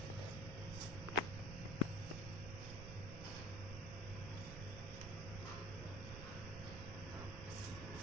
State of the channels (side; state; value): right; noise; rumble, 5 dB below the sound